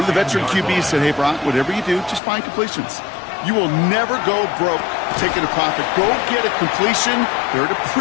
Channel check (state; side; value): drops out; right; at 2.2 s